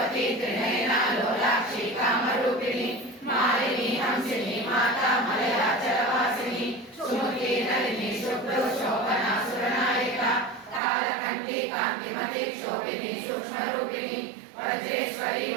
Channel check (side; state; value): left; drops out; at 10.8 s